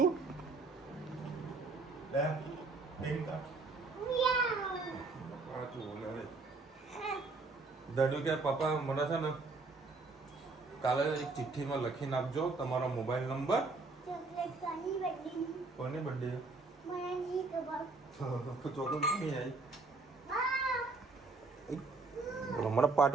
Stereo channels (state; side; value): quieter; left; 3.8 dB